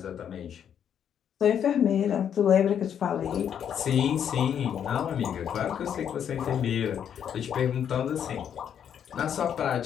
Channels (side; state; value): right; quieter; 8.8 dB